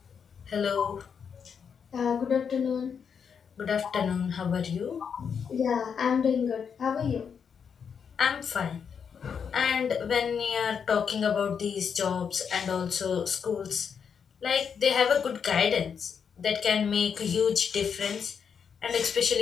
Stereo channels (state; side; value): quieter; right; 6.8 dB